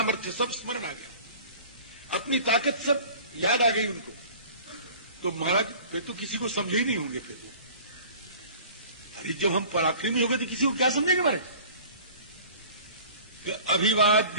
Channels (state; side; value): inverted; both; correlation -0.45